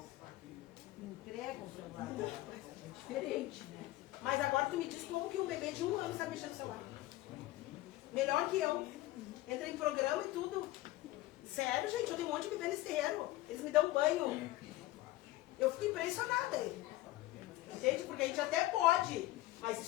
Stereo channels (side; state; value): right; quieter; 17.2 dB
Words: Entregam o celular. É diferente, né? Mas agora tu me diz como que um bebê de 1 ano sabe mexer no celular. Melhor que eu. Entra em programa e tudo. Sério, gente, eu tenho um monte de bebê nesse terreiro. Eles me dão banho. Eu fico impressionada. Entende? Porque a gente até pode. Mas